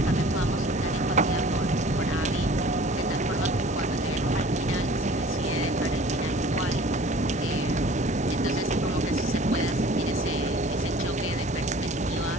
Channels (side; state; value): both; normal; correlation 0.47